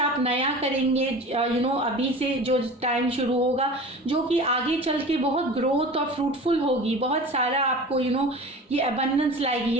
नया करेंगे अभी से जो टाइम शुरू होगा, जो कि आगे चल के बहुत ग्रोथ और फ्रूटफुल होगी, बहुत सारा आपको ये अबंडेंस लाएगी,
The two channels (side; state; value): both; normal; correlation 0.37